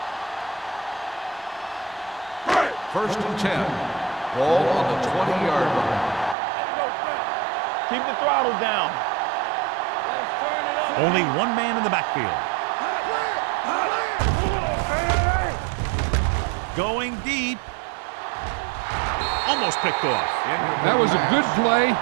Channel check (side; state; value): left; drops out; at 6.4 s